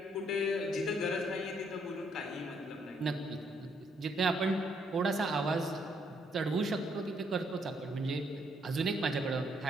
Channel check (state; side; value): normal; both; correlation 0.71